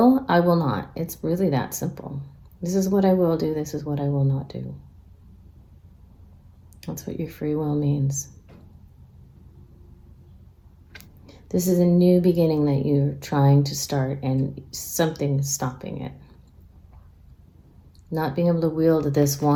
not. It's really that simple. This is what I will do. This is what I will not do. That's what your free will means. This is a new beginning that you're trying to start, and something is stopping it. Not being able to wield this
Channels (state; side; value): identical; both; correlation 1.00